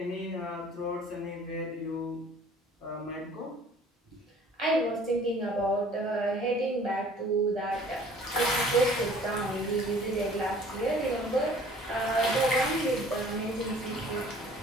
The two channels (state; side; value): normal; both; correlation 0.52